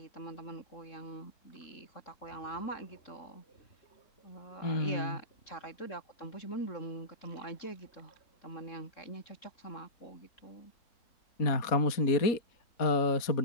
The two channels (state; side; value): late; right; 4.2 ms